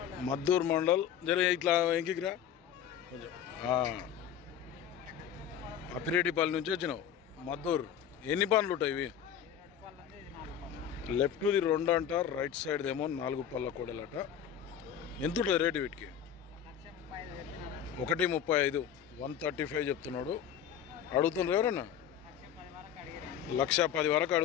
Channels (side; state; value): right; quieter; 9.3 dB